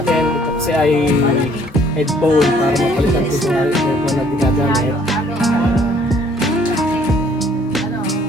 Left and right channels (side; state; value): both; normal; correlation 0.61